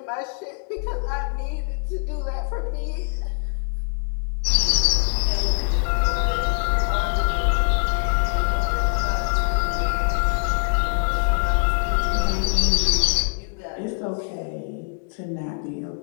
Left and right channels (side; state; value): right; silent; 57 dB below the other